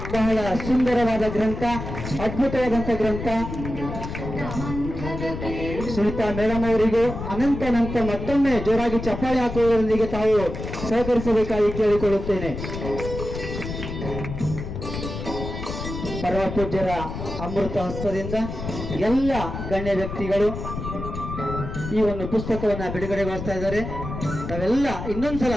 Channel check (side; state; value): left; noise; rumble, 7 dB below the sound